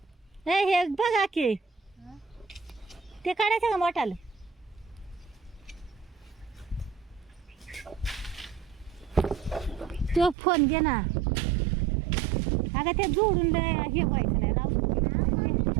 हे बघा की ते काढायचं का मोठालं? तो फोन घे ना. अगं ते जोडून हे पाहिजे नाही राहू.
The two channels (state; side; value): drops out; left; at 10.4 s